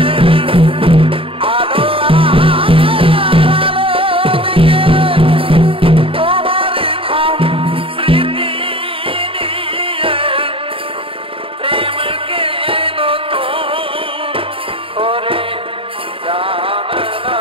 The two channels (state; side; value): late; left; 0.26 ms